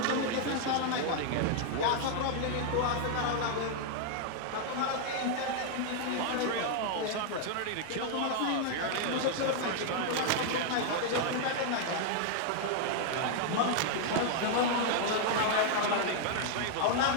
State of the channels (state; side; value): different; both; correlation 0.00